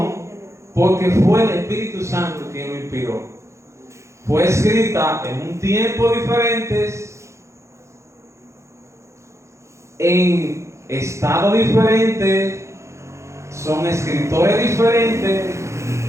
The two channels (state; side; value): late; left; 0.14 ms